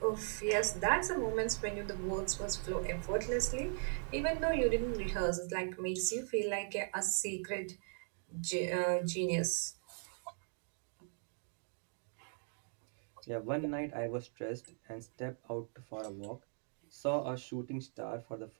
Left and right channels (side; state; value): left; silent; 52 dB below the other